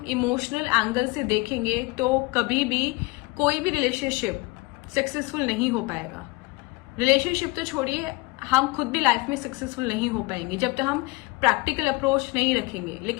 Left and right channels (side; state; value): right; quieter; 23.9 dB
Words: इमोशनल एंगल से देखेंगे तो कभी भी कोई भी रिलेशनशिप सक्सेसफुल नहीं हो पाएगा। रिलेशनशिप तो छोड़िए, हम खुद भी लाइफ में सक्सेसफुल नहीं हो पाएंगे जब तक हम प्रैक्टिकल अप्रोच नहीं रखेंगे।